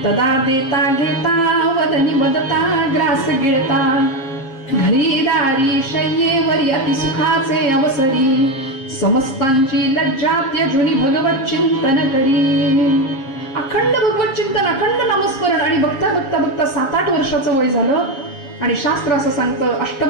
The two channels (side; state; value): right; late; 7.3 ms